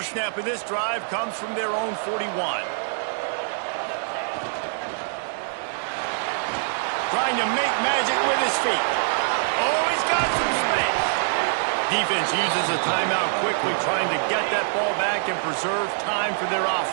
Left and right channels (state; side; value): silent; left; digital silence